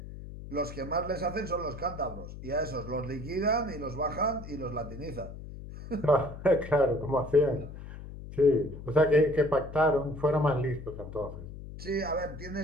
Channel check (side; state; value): left; noise; hum, 12 dB below the sound